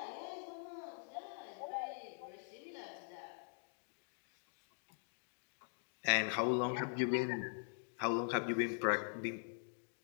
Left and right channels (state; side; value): silent; right; digital silence